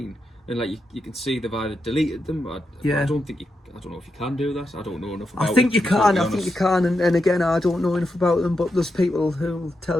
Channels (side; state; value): both; normal; correlation 0.85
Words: And like you can see they've either deleted them. I don't know if you can do that. I don't know enough about it. I think you can. And again, I don't know enough about them. But there's people who'll